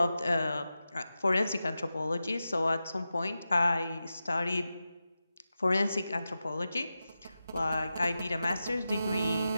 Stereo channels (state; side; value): inverted; both; correlation -0.92